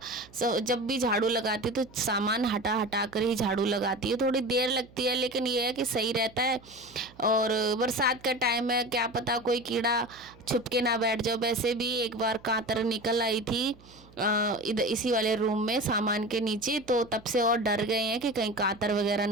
जब भी झाड़ू लगाती तो सामान हटा कर ही झाड़ू लगाती हूँ, थोड़ी देर लगती है लेकिन ये है कि सही रहता है। और बरसात का टाइम है, क्या पता कोई कीड़ा छुप के ना बैठ जाओ। वैसे भी एक बार कांतर निकल आई थी इधर इसी वाले रूम में सामान के नीचे, तो तब से और डर गए हैं कि कहीं कांतर वगैरह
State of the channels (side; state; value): right; noise; hum, 24 dB below the sound